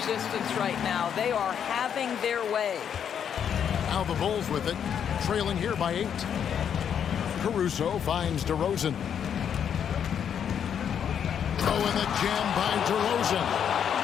right now. They are having their way. Now the Bulls with it, trailing here by 8. Caruso finds DeRozan. Oh, and the jam by DeRozan.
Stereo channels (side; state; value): right; quieter; 8.3 dB